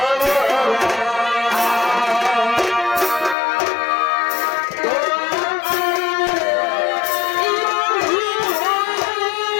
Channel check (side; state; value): right; drops out; at 3.4 s